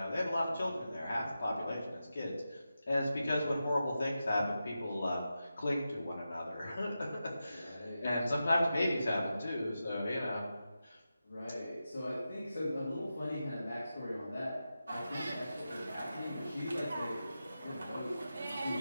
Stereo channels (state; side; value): inverted; both; correlation -0.90